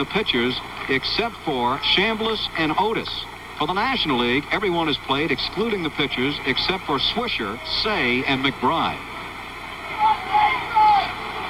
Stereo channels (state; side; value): identical; both; correlation 1.00